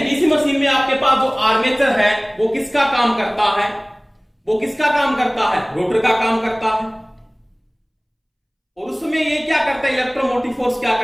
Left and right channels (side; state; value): both; identical; correlation 1.00